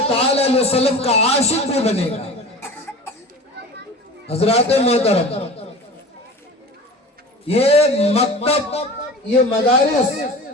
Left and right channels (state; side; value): normal; both; correlation 0.36